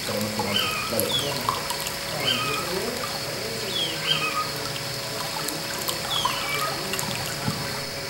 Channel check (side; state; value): both; identical; correlation 1.00